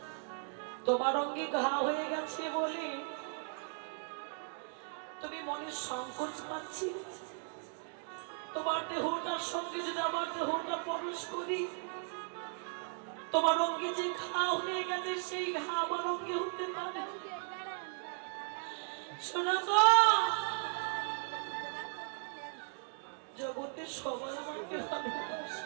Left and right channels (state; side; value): silent; left; 53 dB below the other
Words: তোমার অঙ্গে ঘা হয়ে গেছে বলে তুমি মনে সংকোচ পাচ্ছি। তোমার দেহটার সঙ্গে যদি আমার দেহটা প্রবেশ করি, তোমার অঙ্গে যে ঘা হয়ে গেছে সেই ঘা আমার অঙ্গে হতে পারে। সনাতন জগতে সবাই আমাকে ভালোবাসে।